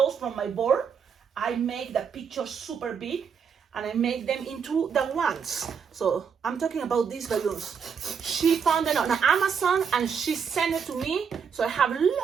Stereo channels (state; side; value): quieter; left; 6.7 dB